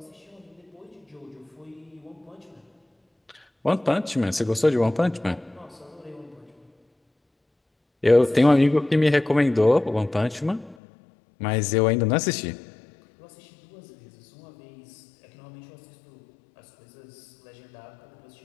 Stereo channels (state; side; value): drops out; right; at 10.8 s